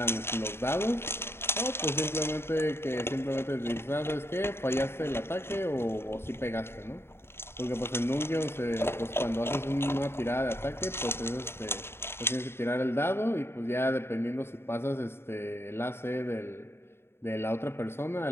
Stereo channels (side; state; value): right; late; 0.12 ms